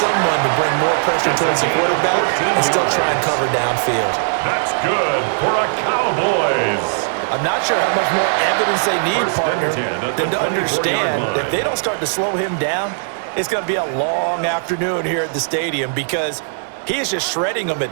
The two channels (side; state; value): left; silent; digital silence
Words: to bring more pressure towards the quarterback and still try and cover downfield. That's good for a Cowboys. I'm not sure how much more evidence they need, partner, than to understand that if they don't start to slow him down, it's going to be a long afternoon here at the stadium because he is just shredding them